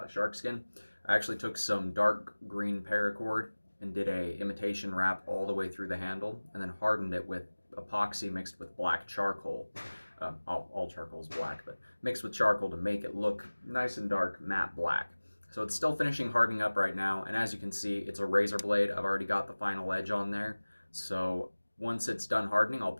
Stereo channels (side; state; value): both; inverted; correlation -1.00